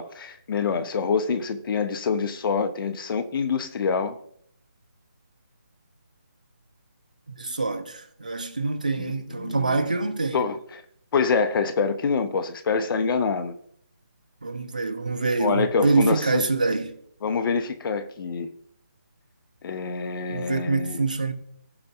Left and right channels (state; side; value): inverted; both; correlation -0.62